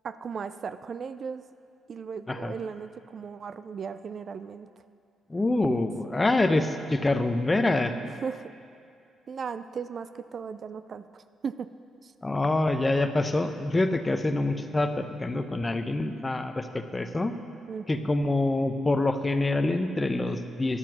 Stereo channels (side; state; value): both; normal; correlation 0.92